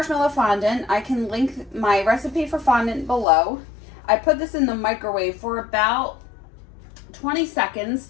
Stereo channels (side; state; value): right; drops out; at 3.2 s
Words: fondant. I can link my recipe for fondant below. I put this in the microwave for about 20 seconds